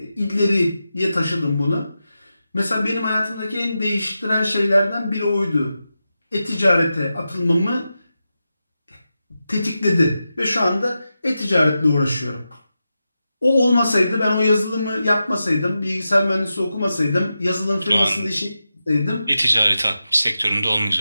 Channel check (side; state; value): both; inverted; correlation -0.90